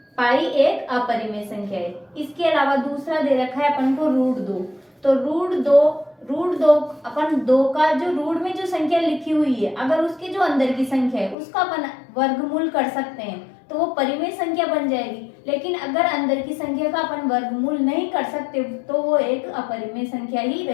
पाई एक अपरिमेय संख्या है। इसके अलावा दूसरा दे रखा है अपन को √2। तो √2 अपन 2 का जो रूट में जो संख्या लिखी हुई है, अगर उसके जो अंदर की संख्या है उसका अपन वर्गमूल कर सकते हैं तो वो परिमेय संख्या बन जाएगी। लेकिन अगर अंदर की संख्या का अपन वर्गमूल नहीं कर सकते तो वो एक अपरिमेय संख्या ही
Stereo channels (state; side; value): drops out; right; at 11.4 s